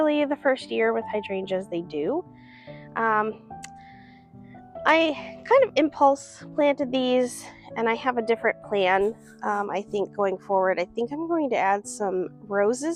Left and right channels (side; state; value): both; identical; correlation 1.00